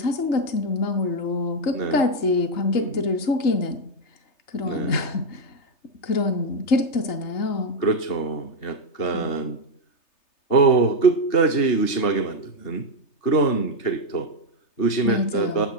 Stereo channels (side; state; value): right; late; 3.3 ms